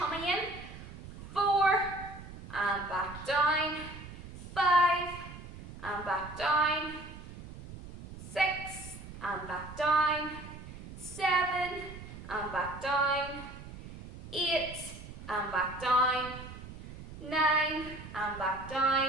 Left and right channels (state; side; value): noise; right; rumble, 13 dB below the sound